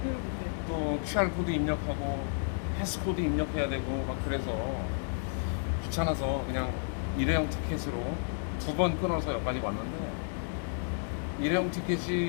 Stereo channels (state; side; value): silent; right; digital silence